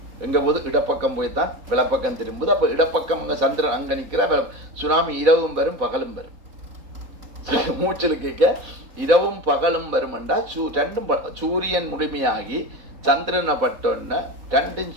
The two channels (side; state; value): left; late; 3.8 ms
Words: எங்க போது இடப்பக்கம் போய்தான் விளப்பக்கம் திரும்புது. அப்ப இடப்பக்கம் அங்க சந்திரன் அங்க நிக்கிற சுனாமி இரவும் வரும் பகலும் வரும். மூச்சல் கேட்க இரவும் பகலும் வரும் என்றா ரெண்டும் சூரியன் முழுமையாகி சந்திரனை பட்டோன்னா ரெண்டும்